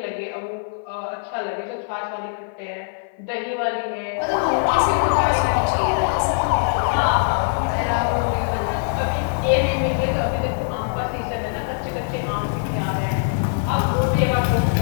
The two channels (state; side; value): silent; right; 55 dB below the other